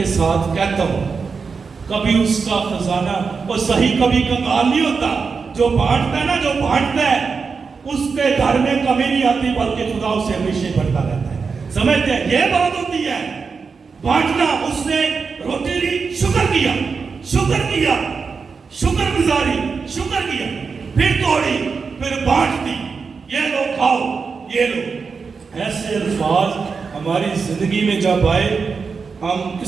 ساتھ کہتا ہوں، کبھی اس کا خزانہ اور صحیح کبھی کنگال نہیں ہوتا. جو بانٹتا ہے نا، جو بانٹتا ہے، اس کے گھر میں کمی نہیں آتی، بلکہ خدا اسے ہمیشہ بڑھتا رہتا ہے. سمجھتے ہیں؟ یہ بات ہوتی ہے بانٹنا. اس نے روٹی لی، شکر کیا، شکر گزاری، شکر کیا، پھر توڑی، پھر بانٹ دی. یہ لو کھاؤ، یہ لو. ایسے الفاظ ہماری زندگی میں جب آئے، ہم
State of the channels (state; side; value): quieter; left; 5.2 dB